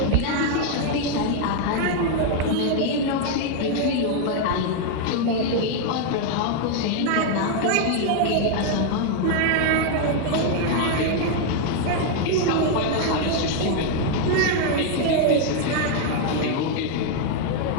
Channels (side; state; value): both; different; correlation 0.00